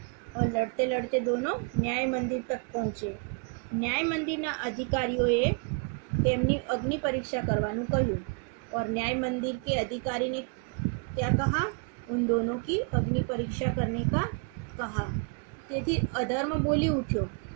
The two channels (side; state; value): left; quieter; 36.7 dB